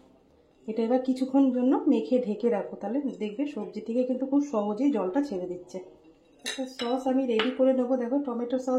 এটা এবার কিছুক্ষণ জন্য মেখে ঢেকে রাখো, তাহলে দেখবে সবজি থেকে কিন্তু খুব সহজেই জলটা ছেড়ে দিচ্ছে। একটা সস আমি রেডি করে নেবো। দেখো টমেটো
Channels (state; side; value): identical; both; correlation 1.00